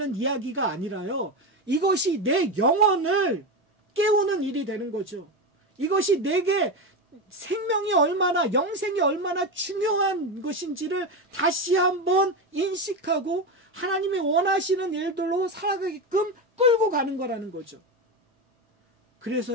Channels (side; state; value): both; normal; correlation 0.16